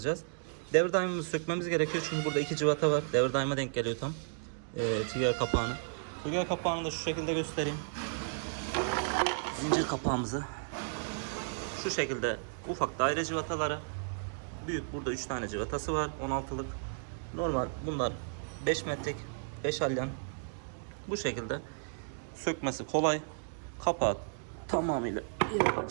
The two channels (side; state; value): left; silent; digital silence